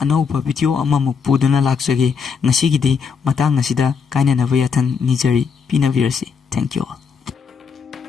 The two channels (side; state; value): right; quieter; 5.9 dB